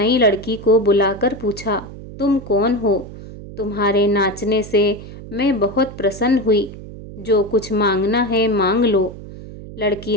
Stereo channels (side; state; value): right; noise; hum, 14 dB below the sound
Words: लड़की को बुलाकर पूछा, तुम कौन हो? तुम्हारे नाचने से मैं बहुत प्रसन्न हुई। जो कुछ मांगना है मांग लो। लड़की